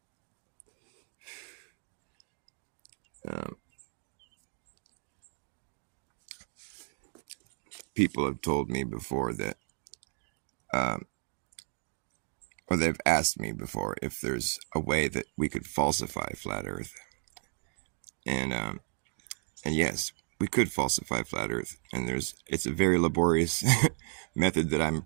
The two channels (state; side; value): silent; left; digital silence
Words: People have told me before that, or they've asked me before if there's a way that we could falsify flat Earth, and yes, we could falsify flat Earth, and it's a very laborious method that I'm